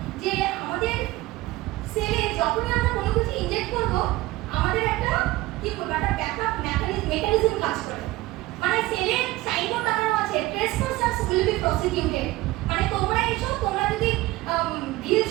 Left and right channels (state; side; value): quieter; left; 18.8 dB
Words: যে আমাদের সেলে যখনই আমরা কোনো কিছু ইনজেক্ট করব, আমাদের একটা কি বলবো, একটা ব্যাকআপ মেকানিজম কাজ করে। মানে সেলে সাইনবোর্ড লাগানো আছে, ট্রেসপাসার্স উইল বি প্রসিকিউটেড, মানে তোমরা এসো, তোমরা যদি ঢিল